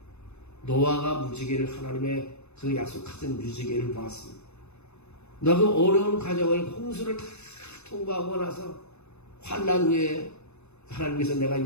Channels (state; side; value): late; right; 0.81 ms